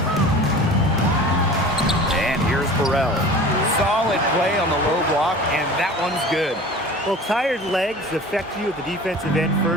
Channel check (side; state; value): both; normal; correlation 0.40